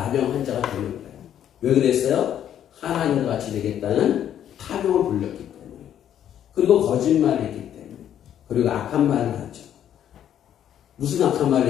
환자가 되는 거예요. 왜 그랬어요? 하나님과 같이 되겠다는 탐욕을 불렸기 때문에. 그리고 거짓말을 했기 때문에. 그리고 악한 말을 하죠. 무슨 악한 말을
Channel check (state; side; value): quieter; right; 10.2 dB